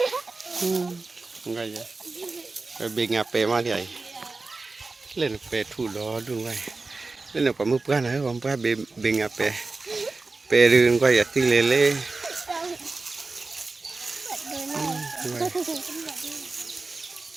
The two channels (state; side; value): quieter; left; 3.7 dB